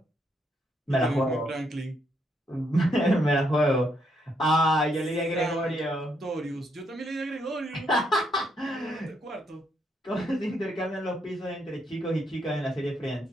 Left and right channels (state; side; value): normal; both; correlation 0.75